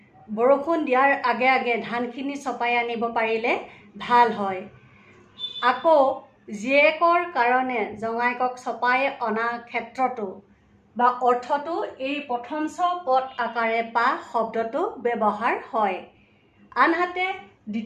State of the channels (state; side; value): identical; both; correlation 1.00